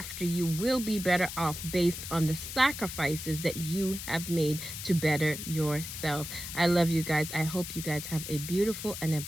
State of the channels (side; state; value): left; noise; hiss, 8 dB below the sound